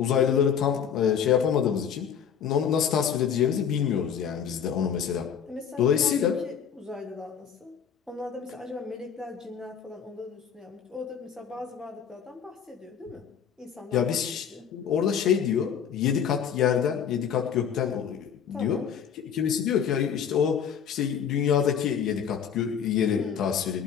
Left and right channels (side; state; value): right; quieter; 7.9 dB